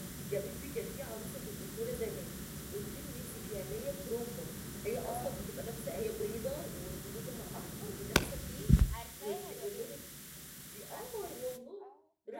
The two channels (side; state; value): both; identical; correlation 1.00